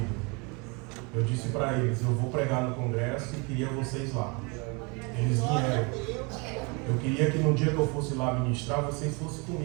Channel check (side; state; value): left; quieter; 30.4 dB